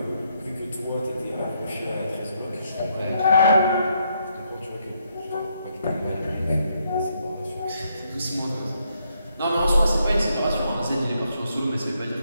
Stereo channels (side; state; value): both; inverted; correlation -0.75